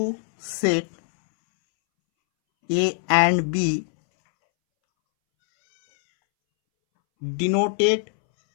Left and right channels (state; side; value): silent; right; 64 dB below the other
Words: set A and B denoted